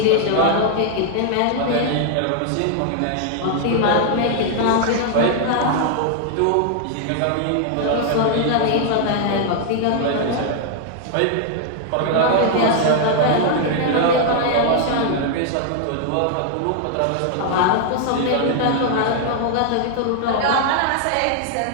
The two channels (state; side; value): different; both; correlation 0.00